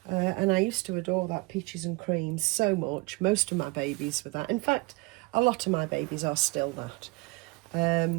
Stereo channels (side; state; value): left; quieter; 25.5 dB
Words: And I used to adore that peaches and cream so much. Most of my babies were that. In fact, a lot of my babies are still that.